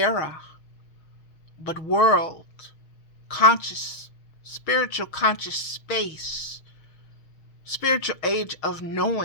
but world, conscious, spiritual conscious space, spiritual age of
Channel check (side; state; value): right; late; 6.4 ms